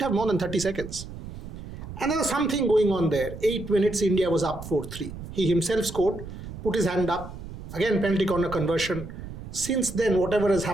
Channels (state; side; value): noise; right; rumble, 11 dB below the sound